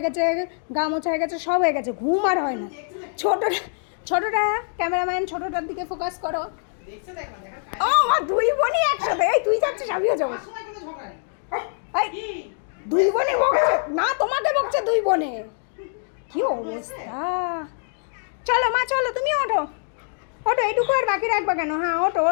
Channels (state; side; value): silent; right; 63 dB below the other